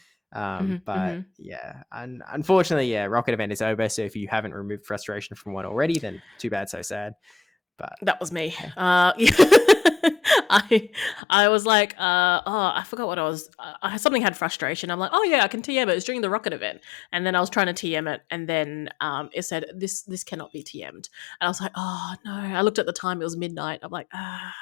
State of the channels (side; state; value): right; drops out; at 11.2 s